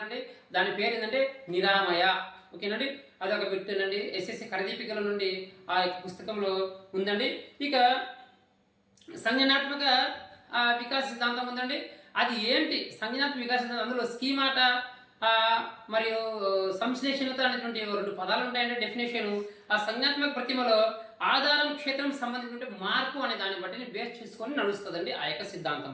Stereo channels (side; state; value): both; identical; correlation 1.00